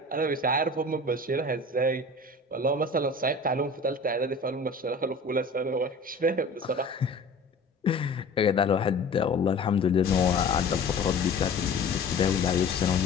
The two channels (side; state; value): right; quieter; 3.0 dB